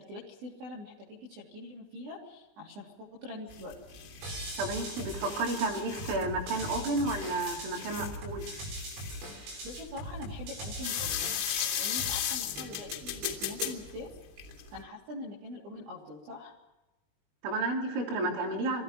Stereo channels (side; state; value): left; late; 20 ms